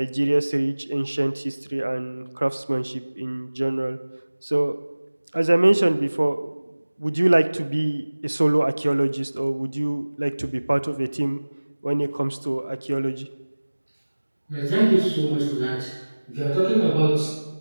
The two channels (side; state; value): both; inverted; correlation -1.00